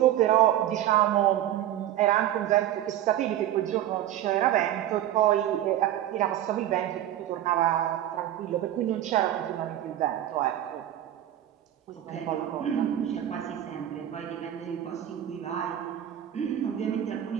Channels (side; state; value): left; quieter; 12.2 dB